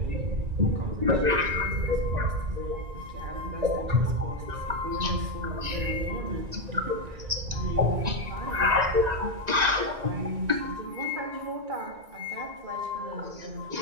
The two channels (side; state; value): left; late; 1.9 ms